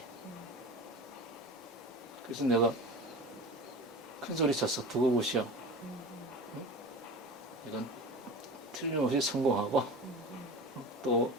그래서 내가 큰 소리 쳤어. 두고 보시오. 응? 이건 틀림없이 성공하고 또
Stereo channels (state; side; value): normal; both; correlation 0.33